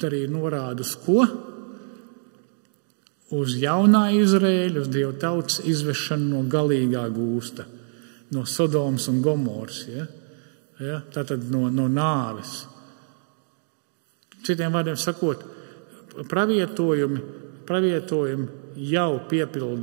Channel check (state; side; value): silent; left; digital silence